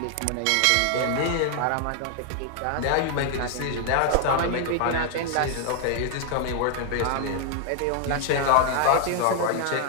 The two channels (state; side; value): different; both; correlation 0.00